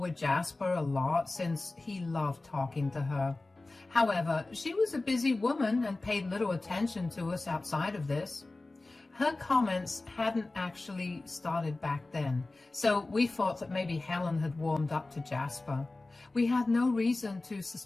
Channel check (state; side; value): quieter; right; 3.1 dB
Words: Jasper a lot since he loved talking to her. However, she was a busy woman and paid little attention to us outside of this. Her comments hadn't actually started back then, so we thought that maybe Helen had warmed up to Jasper. We had no reason to